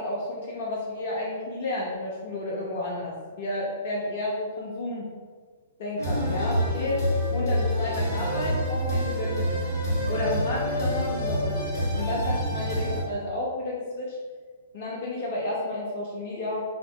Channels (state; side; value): inverted; both; correlation -0.52